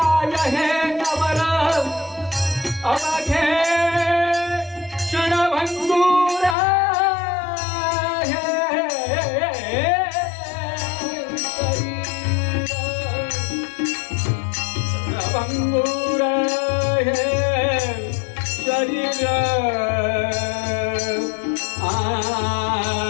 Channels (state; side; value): drops out; right; at 6.6 s